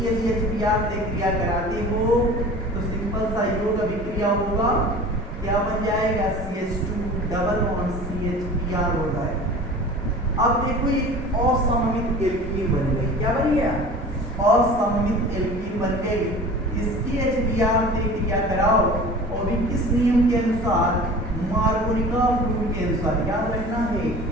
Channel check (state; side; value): normal; both; correlation 0.40